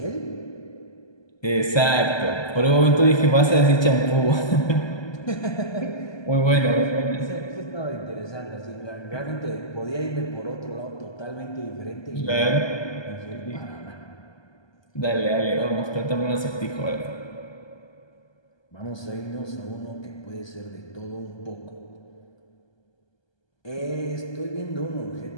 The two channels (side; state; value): right; late; 1.2 ms